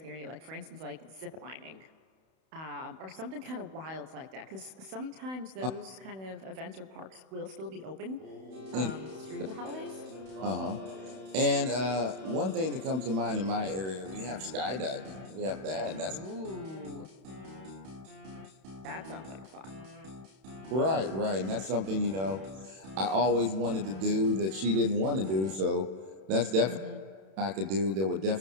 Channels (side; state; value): left; late; 31 ms